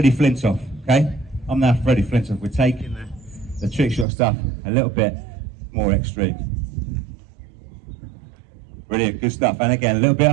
Flintoff, okay? I'm now Freddie Flintoff. We're taking the trick shot stuff a little bit more extreme. Brilliant. Good stuff. And again, a little bit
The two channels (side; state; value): left; drops out; at 4.0 s